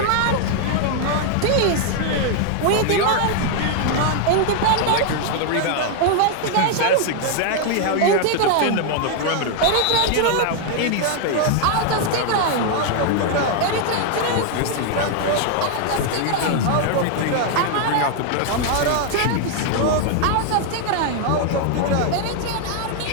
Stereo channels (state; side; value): different; both; correlation 0.00